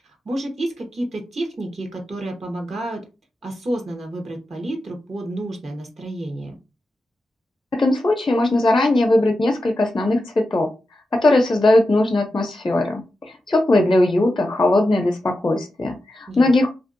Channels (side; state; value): both; normal; correlation 0.90